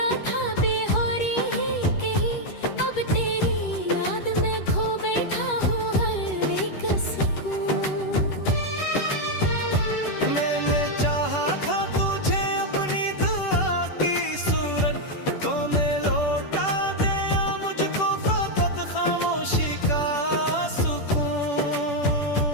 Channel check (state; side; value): late; right; 10 ms